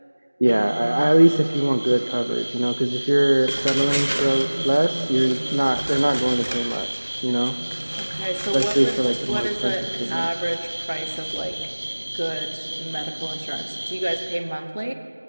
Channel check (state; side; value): inverted; both; correlation -1.00